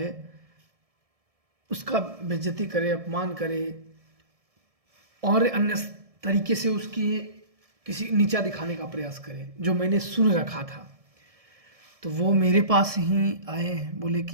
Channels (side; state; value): left; late; 1.7 ms